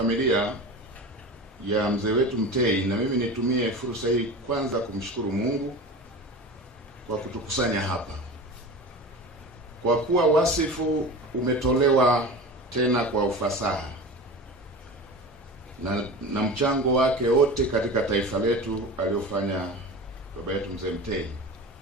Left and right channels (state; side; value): normal; both; correlation 0.32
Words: ya mzee wetu Mtei, na mimi nitumie fursa hii kwanza kumshukuru Mungu kwa kutukusanya hapa, kwa kuwa wasifu umetolewa tena kwa ufasaha na mchango wake wote katika taifa letu aliofanya baba yetu mzee Mtei.